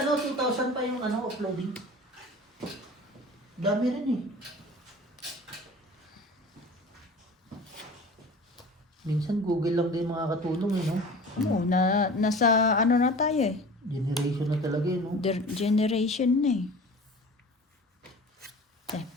ano, 2,000 pa yung ano, uploading. Dami rin eh. Minsan Google lang din makakatulong eh, no? Oo, nasa ano na tayo eh. Generation na talaga eh, no? Generation na eh.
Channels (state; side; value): normal; both; correlation 0.40